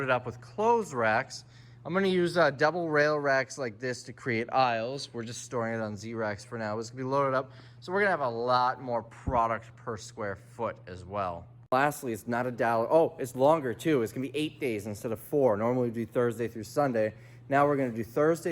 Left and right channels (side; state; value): both; identical; correlation 1.00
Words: up with clothes racks. I'm gonna use double rail racks like this to create aisles. We're just storing it on Z-racks for now. It's gonna be loaded up. So we're gonna have a lot more product per square foot as well. Lastly, it's not $1. Oh, it's longer too. It's gonna be 8 days instead of 4. Normally we do Thursday through Sunday. Now we're gonna do